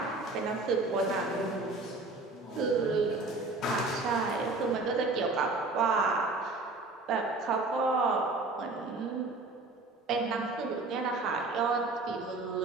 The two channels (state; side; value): quieter; left; 3.3 dB